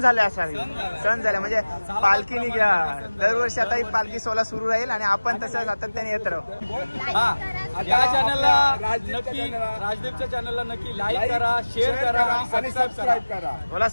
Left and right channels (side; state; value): both; inverted; correlation -1.00